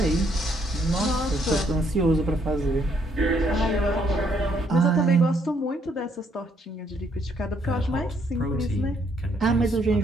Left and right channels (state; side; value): normal; both; correlation 0.70